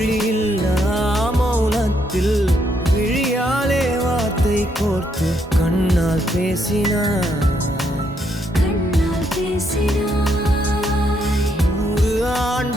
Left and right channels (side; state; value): both; normal; correlation 0.75